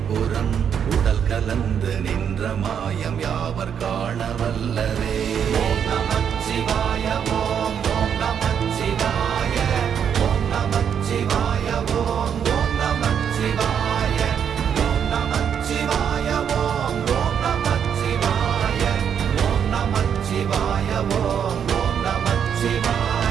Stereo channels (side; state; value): left; quieter; 8.1 dB